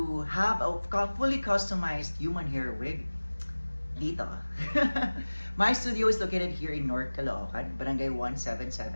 have a fully customized human hair wig, dito. My studio is located here in North Caloocan, Barangay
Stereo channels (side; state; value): both; inverted; correlation -1.00